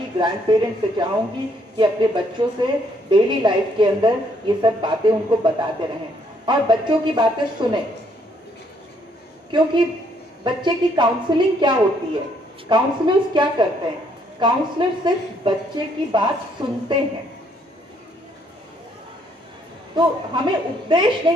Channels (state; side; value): normal; both; correlation 0.68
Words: ग्रैंड पेरेंट्स से चाहूंगी कि अपने बच्चों से डेली लाइफ के अंदर ये सब बातें उनको बताते रहें और बच्चों की बातें सुने। क्योंकि बच्चे की काउंसलिंग क्या होती है, काउंसलर्स क्या करते हैं? काउंसलर सिर्फ बच्चे की बात सुनते हैं। तो हमें उपदेश